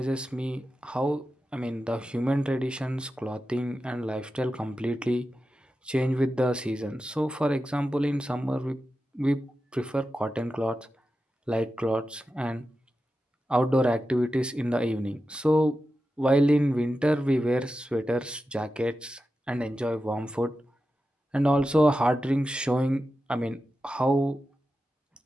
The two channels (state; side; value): normal; both; correlation 0.91